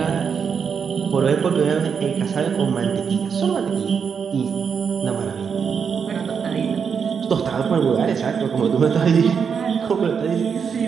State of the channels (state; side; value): quieter; left; 6.5 dB